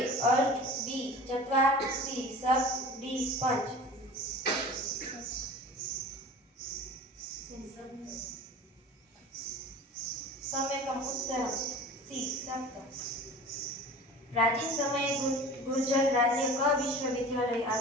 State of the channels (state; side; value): normal; both; correlation 0.39